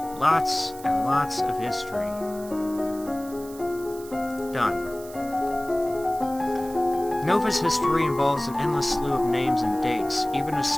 Lots and lots of history. Done. Nova's history involves an endless slew of names and dates. Even as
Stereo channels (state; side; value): noise; right; hiss, 18 dB below the sound